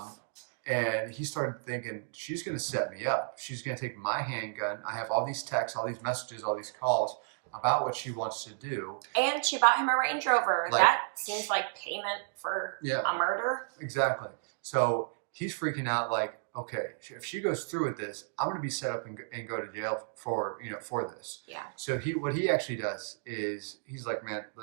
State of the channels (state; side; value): silent; left; digital silence